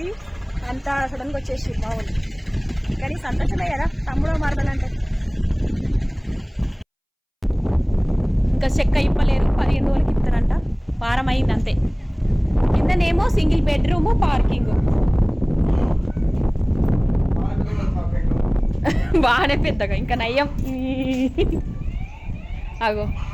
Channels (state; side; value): identical; both; correlation 1.00